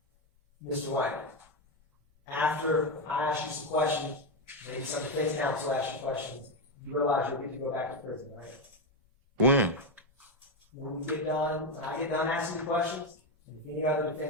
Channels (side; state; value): both; normal; correlation 0.07